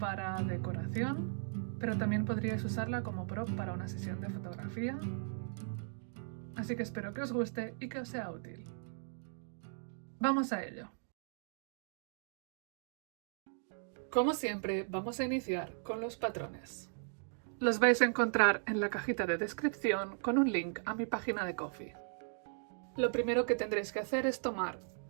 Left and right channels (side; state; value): left; silent; digital silence